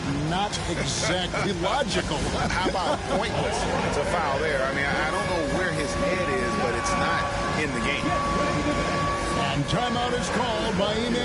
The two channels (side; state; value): both; identical; correlation 1.00